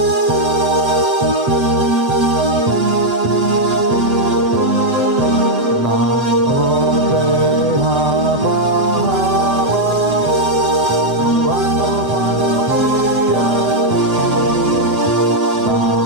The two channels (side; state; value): left; late; 7.4 ms